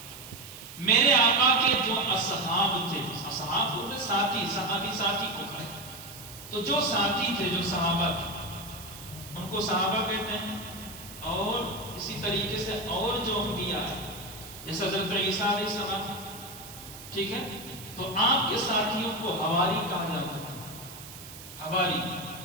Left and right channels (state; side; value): noise; right; hiss, 15 dB below the sound